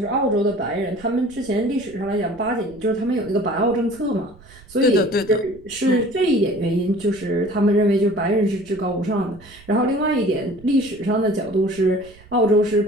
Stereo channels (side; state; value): right; noise; rumble, 23 dB below the sound